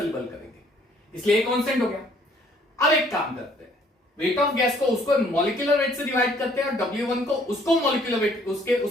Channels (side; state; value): both; normal; correlation 0.61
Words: करेंगे, इसलिए कांस्टेंट हो गया। अब एक काम करते हैं, वेट ऑफ गैस को उसको मॉलिक्यूलर वेट से डिवाइड करते हैं और W1 को उसको मॉलिक्यूलर वेट